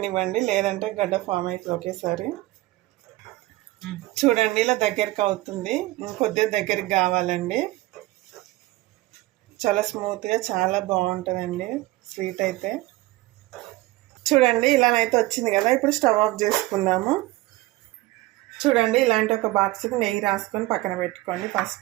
లేదంటే గడ్డ ఫామ్ అవుతుంది ఒకేసారి. చూడండి, ఇలా దగ్గరికి అవుతుంది. ఇంకొద్దిగా దగ్గరికి కావాలండి. చాలా స్మూత్గా చాలా బాగుంటుందండి స్వీట్ అయితే. చూడండి, ఇలానైతే వచ్చింది కదా. ఇప్పుడు స్టవ్ ఆఫ్ చేసుకుందాము. చూడండి, ఇలాంటి ఒక బాక్స్కి నెయ్యి రాసుకొని పక్కన పెట్టుకోండి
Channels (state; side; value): quieter; left; 18.8 dB